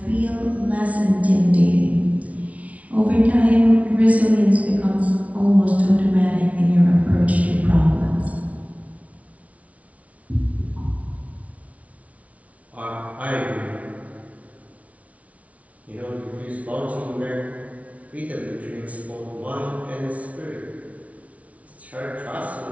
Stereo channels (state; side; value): late; left; 0.067 ms